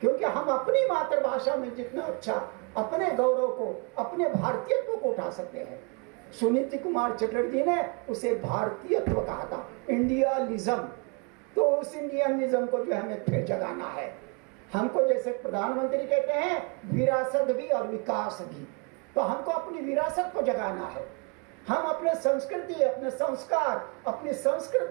क्योंकि हम अपनी मातृभाषा में जितना अच्छा अपने गौरव को, अपने भारतीयत्व को उठा सकते हैं। सुनीति कुमार चटर्जी ने उसे भारतीयत्व कहा था, इंडियालिज्म। तो उस इंडियनिज्म को जो हमें फिर जगाना है। हमको जैसे प्रधानमंत्री कहते हैं विरासत भी और विकास भी, तो हमको अपनी विरासत को जगाना है। हम अपने संस्कृति, अपने संस्कार, अपनी संस्कृत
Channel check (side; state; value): left; quieter; 33.2 dB